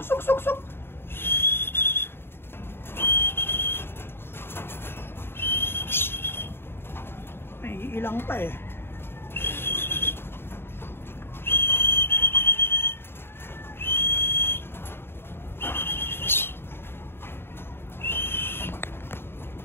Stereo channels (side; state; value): right; late; 0.11 ms